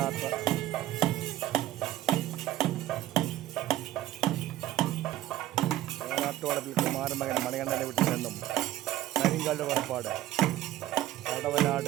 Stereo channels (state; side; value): quieter; left; 14.2 dB